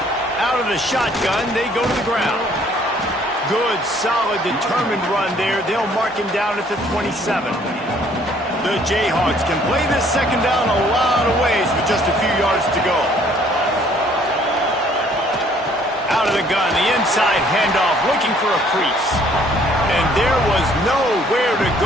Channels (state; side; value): normal; both; correlation 0.61